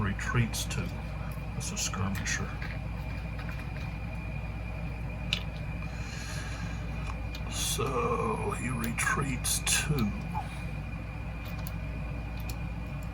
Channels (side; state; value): both; identical; correlation 1.00